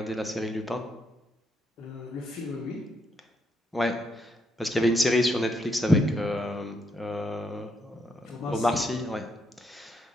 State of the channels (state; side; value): normal; both; correlation 0.77